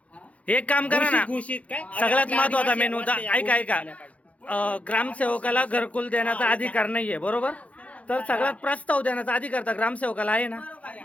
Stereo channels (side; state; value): right; late; 0.066 ms